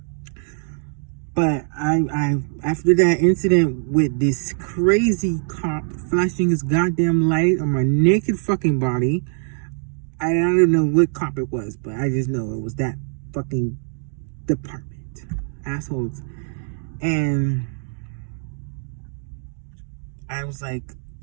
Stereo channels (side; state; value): left; silent; 64 dB below the other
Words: But I after that incident with this crazy cop flashing his goddamn light on my naked fucking body, I don't know what cop it was, but I just know it was that fucking department. Assholes. And I was like,